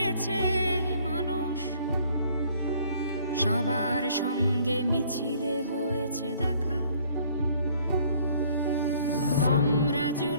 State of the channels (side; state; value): both; inverted; correlation -0.59